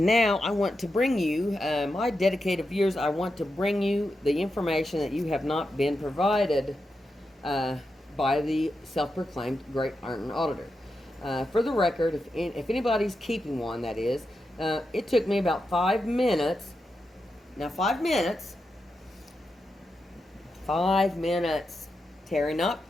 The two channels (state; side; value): normal; both; correlation 0.88